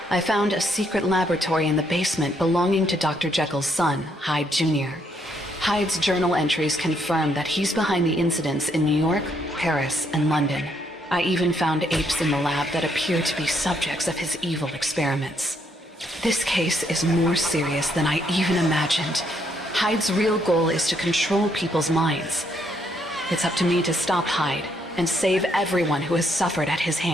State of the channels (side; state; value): both; normal; correlation 0.73